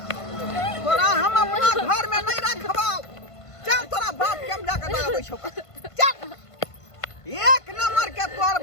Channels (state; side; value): late; right; 1.5 ms